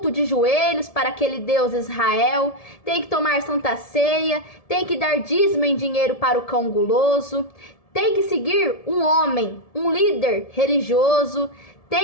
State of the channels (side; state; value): right; late; 1.7 ms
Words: de joelhos para aquele Deus Israel, tem que tomar santa ceia, tem que dar dízimo em dinheiro para o cão guloso, tem que seguir um homem, um líder religioso,